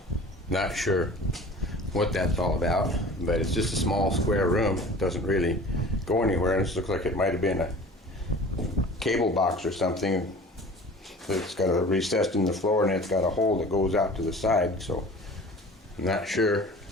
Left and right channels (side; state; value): both; normal; correlation 0.42